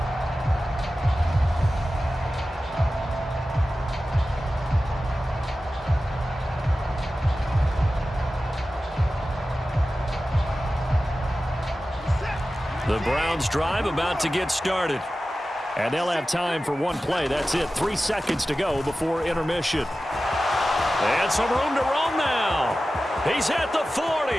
The Browns drive about to get started. And they'll have time for one play. That's it. 3 seconds to go before intermission. And some room to roam now. He's at the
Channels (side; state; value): both; normal; correlation 0.94